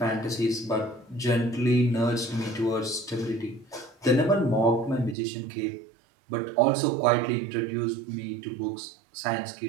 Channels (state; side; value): drops out; left; at 5.2 s